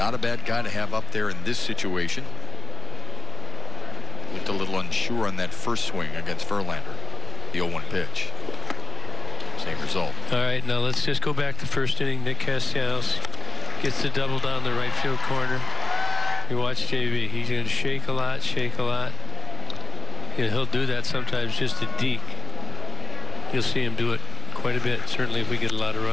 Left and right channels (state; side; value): quieter; right; 3.6 dB